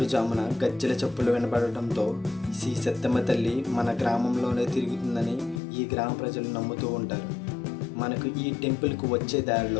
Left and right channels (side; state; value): right; drops out; at 5.6 s